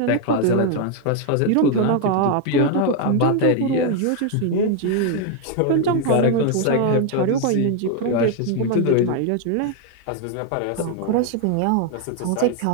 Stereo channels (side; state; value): both; different; correlation 0.00